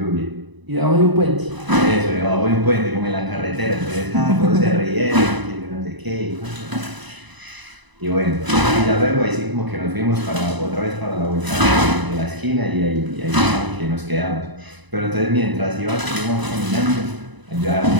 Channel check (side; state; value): left; late; 1.0 ms